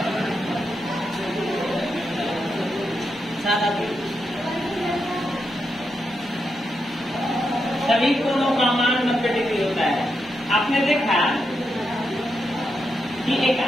सभी कोणों का मान 90 डिग्री होता है। आपने देखा कि एक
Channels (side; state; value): both; normal; correlation 0.84